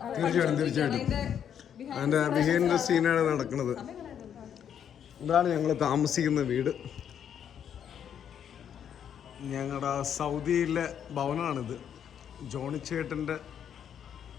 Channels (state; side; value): quieter; right; 8.8 dB